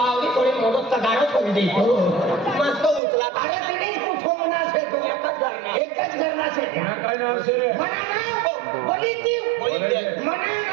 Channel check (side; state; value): left; drops out; at 3.0 s